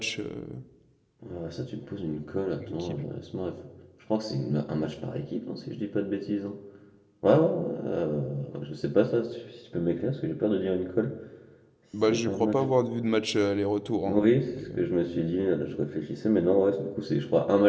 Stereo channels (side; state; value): both; identical; correlation 1.00